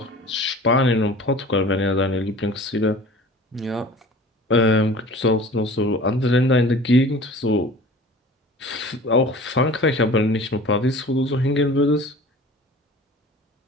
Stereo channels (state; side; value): normal; both; correlation 0.42